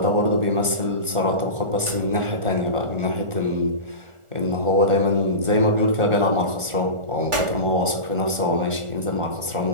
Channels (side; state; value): left; late; 1.4 ms